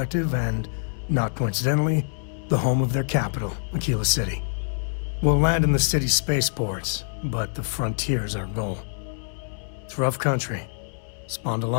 and, not coincidentally, the home of their capital, Aquila City. We'll land in the city's spaceports, but the frontier's our goal. It's rough country. Spawned a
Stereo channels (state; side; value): silent; right; 61 dB below the other